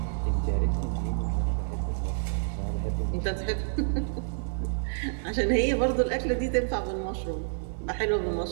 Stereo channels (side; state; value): left; silent; digital silence